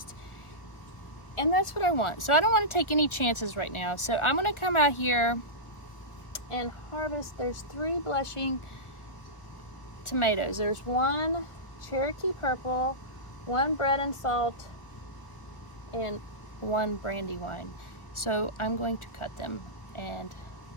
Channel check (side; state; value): right; late; 1.3 ms